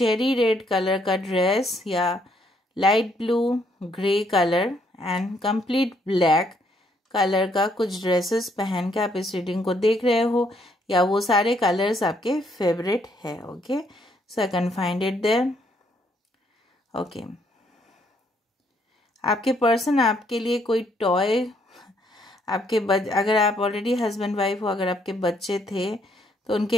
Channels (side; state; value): both; normal; correlation 0.70